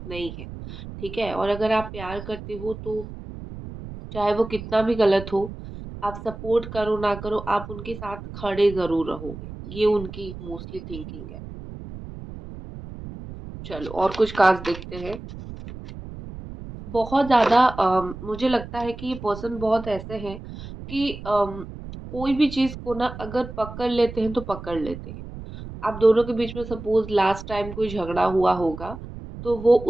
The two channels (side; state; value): right; noise; rumble, 12 dB below the sound